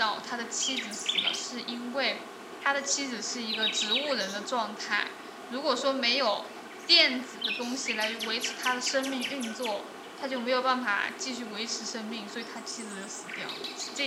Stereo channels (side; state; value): both; identical; correlation 1.00